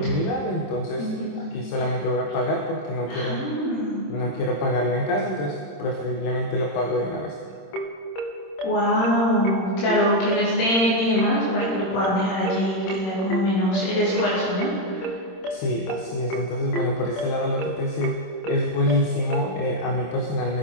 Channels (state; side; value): late; right; 26 ms